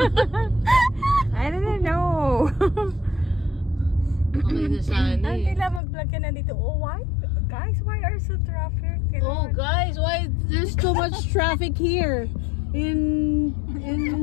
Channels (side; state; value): right; drops out; at 5.8 s